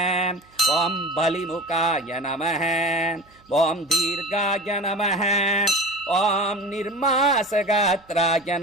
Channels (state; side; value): noise; right; hum, 30 dB below the sound